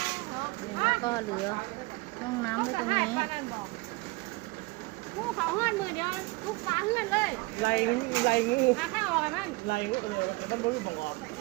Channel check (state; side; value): quieter; left; 23.9 dB